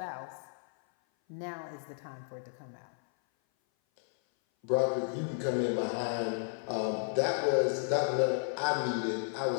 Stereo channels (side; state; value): right; silent; 56 dB below the other